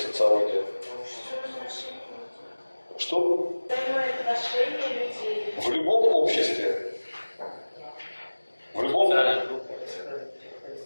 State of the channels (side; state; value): both; inverted; correlation -1.00